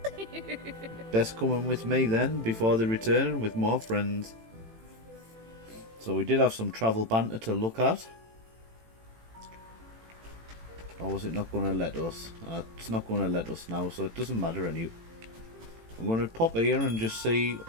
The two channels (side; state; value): left; late; 18 ms